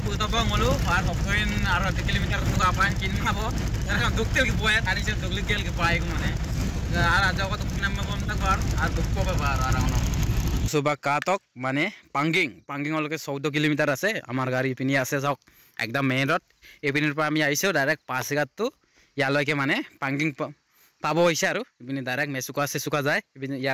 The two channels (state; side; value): identical; both; correlation 1.00